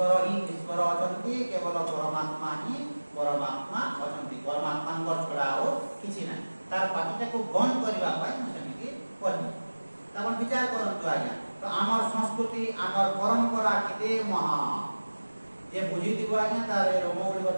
হি ঈশ্বর অছন্তি কেবল পরমাত্মা হি পরমাত্মা অছন্তি পরমাত্মাঙ্কর ছড়া ଆଉ କିଛି ନାହିଁ ତାର ପାଟିଟାକୁ ବନ୍ଦ କରିବା ପାଇଁ ମୁଁ ସେମିତି କହିବି ଆପଣ ବିଚାର କରନ୍ତୁ ଆଜ୍ଞା ତ ଆମର ସଂସ୍କୃତି ଆମର ପରମ୍ପରା କେତେ ମହାନ जे बुझीथिबो आज्ञा तार रोमगुड़िक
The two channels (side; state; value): both; inverted; correlation -1.00